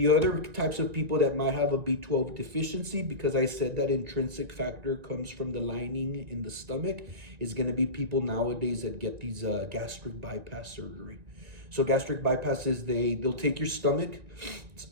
other types of people that might have a B12 deficiency, because I said that intrinsic factor comes from the lining in the stomach, is going to be people nowadays that get these gastric bypass surgery. So gastric bypass is they'll take your stomach,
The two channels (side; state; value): left; late; 1.9 ms